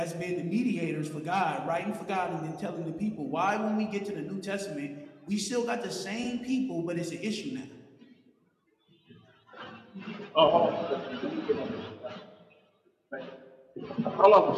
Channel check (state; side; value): identical; both; correlation 1.00